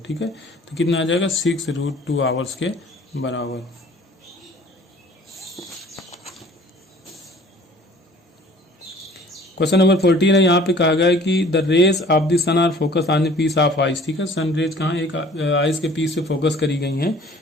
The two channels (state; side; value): normal; both; correlation 0.50